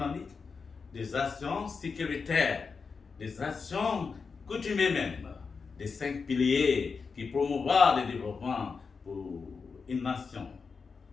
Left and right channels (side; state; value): right; quieter; 5.1 dB